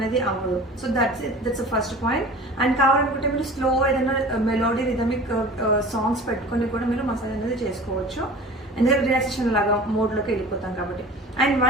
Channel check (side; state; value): both; normal; correlation 0.40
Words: అవ్వదు. So that's first point. And కావాలనుకుంటే మీరు స్లో ఏదైనా మెలోడీ రిథమిక్ సాంగ్స్ పెట్టుకొని కూడా మీరు మసాజ్ అనేది చేసుకోవచ్చు, ఎందుకంటే రిలాక్సేషన్ లాగా మోడ్లోకి వెళ్ళిపోతాం కాబట్టి. అండ్